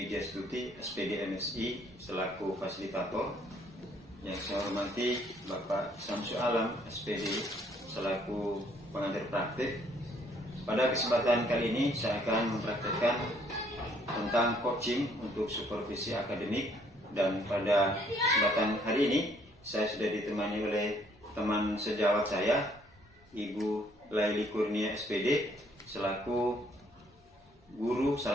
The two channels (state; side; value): normal; both; correlation 0.65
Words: SPD MSI selaku fasilitator. Yang saya hormati Bapak Samsu Alam, SPD selaku pengajar praktik. Pada kesempatan kali ini saya akan mempraktekkan tentang coaching untuk supervisi akademik, dan pada kesempatan hari ini saya sudah ditemani oleh teman sejawat saya, Ibu Laili Kurnia SPD selaku guru,